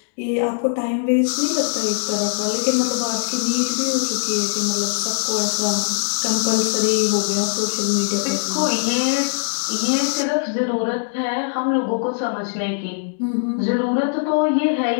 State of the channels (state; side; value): silent; right; digital silence